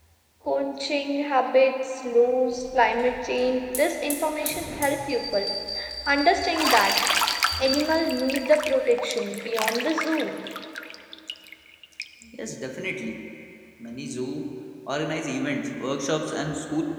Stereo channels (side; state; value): both; identical; correlation 1.00